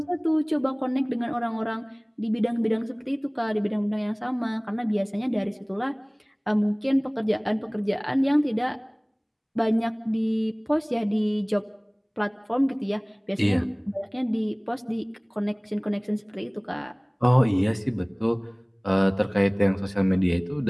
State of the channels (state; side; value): identical; both; correlation 1.00